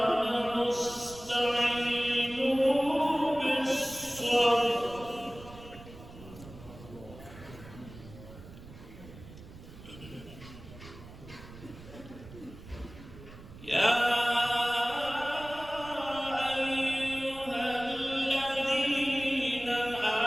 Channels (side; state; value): right; noise; rumble, 17 dB below the sound